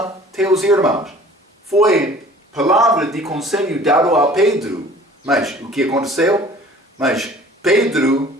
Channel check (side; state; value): both; normal; correlation 0.48